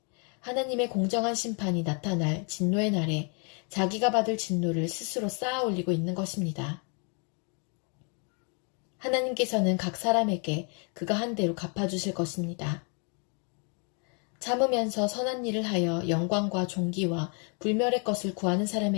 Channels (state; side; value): quieter; right; 37.8 dB